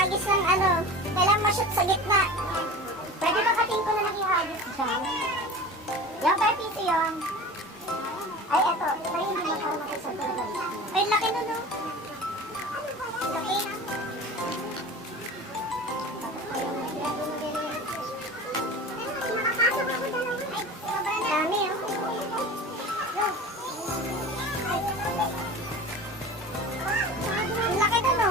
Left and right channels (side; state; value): both; normal; correlation 0.36